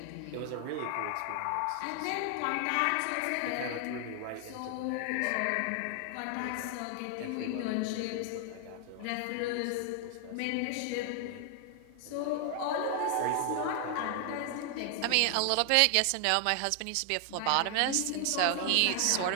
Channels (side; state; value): both; different; correlation 0.00